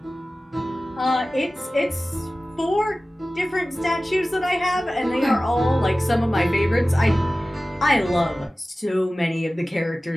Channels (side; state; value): both; normal; correlation 0.96